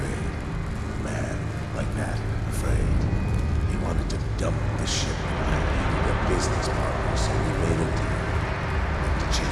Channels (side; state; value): both; identical; correlation 1.00